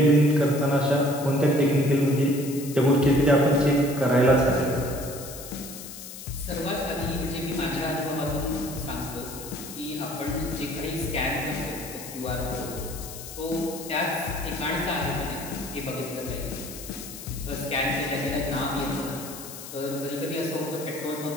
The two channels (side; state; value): left; noise; hiss, 12 dB below the sound